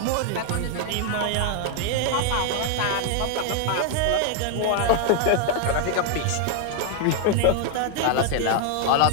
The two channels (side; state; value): both; different; correlation 0.00